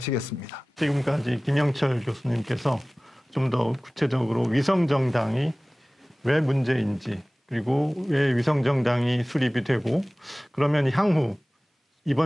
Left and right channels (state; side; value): normal; both; correlation 0.98